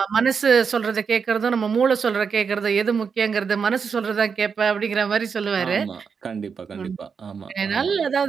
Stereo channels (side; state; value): left; quieter; 6.0 dB